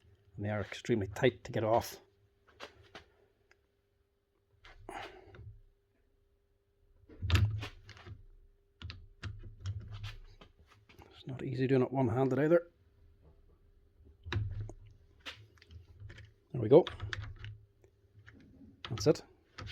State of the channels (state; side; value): identical; both; correlation 1.00